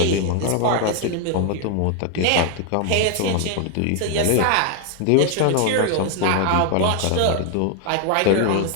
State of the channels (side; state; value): both; different; correlation 0.01